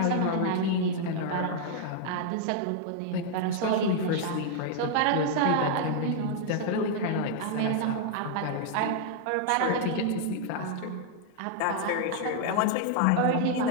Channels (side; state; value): both; different; correlation -0.01